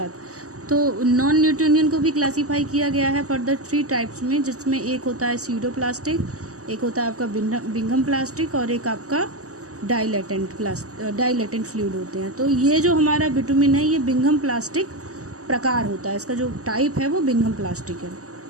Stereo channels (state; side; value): late; left; 0.66 ms